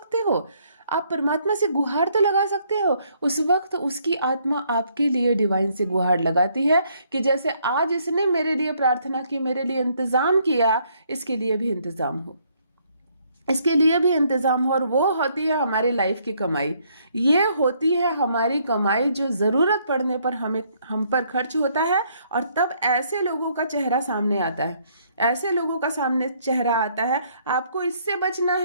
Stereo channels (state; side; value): inverted; both; correlation -0.68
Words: हो। आप परमात्मा से गुहार तो लगा सकते हो। उस वक्त उसकी आत्मा आपके लिए डिवाइन से गुहार लगाती है कि जैसे आज इसने मेरे लिए प्रार्थना की, मेरे लिए इंतजाम किया, इसके लिए भी इंतजाम हो, इसके लिए भी इंतजाम हो। और वो होती है हमारी लाइफ की कमाई, ये होती है हमारी कमाई जो जरूरत पड़ने पर हम पर खर्च होता है। और तब ऐसे लोगों का चेहरा सामने आता है, ऐसे लोगों का सामने चेहरा आता है। आपको इससे बचना